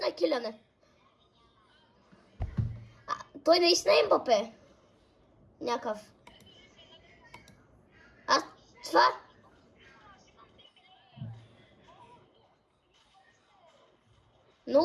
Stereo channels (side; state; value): both; identical; correlation 1.00